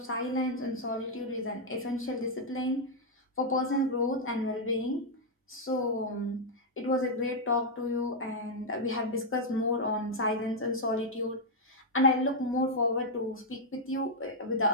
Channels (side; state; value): both; normal; correlation -0.03